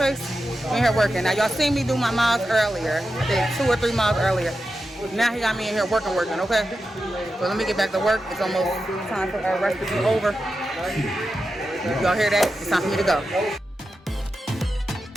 We're in here working. Now, y'all seen me do my miles earlier. I did 2 or 3 miles earlier. Now he got me in here working, okay? So let me get back to work. It's almost time for our rest to be over. Y'all hear that? It's time for me to go.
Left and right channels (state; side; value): normal; both; correlation 0.90